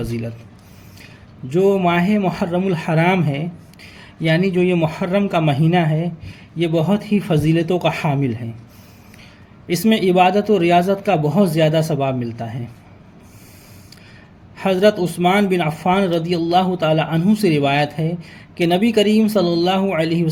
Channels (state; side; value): identical; both; correlation 1.00